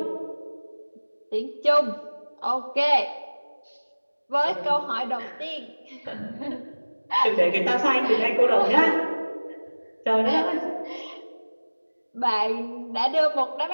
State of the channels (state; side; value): inverted; both; correlation -1.00